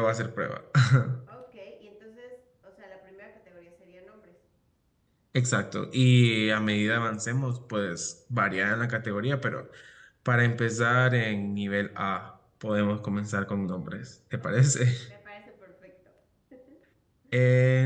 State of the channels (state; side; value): identical; both; correlation 1.00